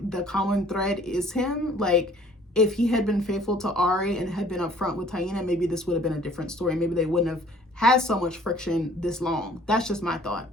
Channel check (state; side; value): normal; both; correlation 0.55